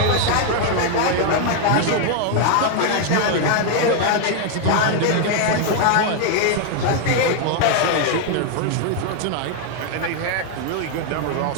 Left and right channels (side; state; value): both; different; correlation 0.00